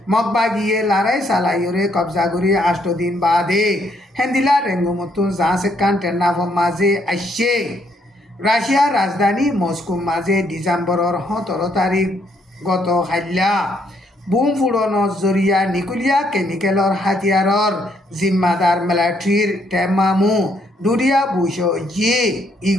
মগবাগিয়ে লড়াই চালাইয়রে কবজা করি 8 দিন বাদে হেন্দিল্লা রেঙ্গুমতুন জাঁসেকান টেন্নাফর মাঝে আসছে রাশিয়ার রাজধানী মস্কো মাঝে ডিসেম্বরের 17 তারিখ গত হাইলা বুম ফুড়নৰ জৰিয়া নিকুলিয়া কেমিকেলৰ হাতিয়াৰৰ জিম্মাদার মিলিটারির টেমামু দুরিয়া বুশো জি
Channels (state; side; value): normal; both; correlation 0.71